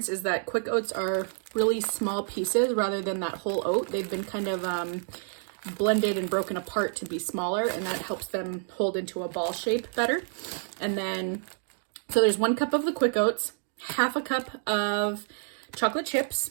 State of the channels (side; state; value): left; silent; 59 dB below the other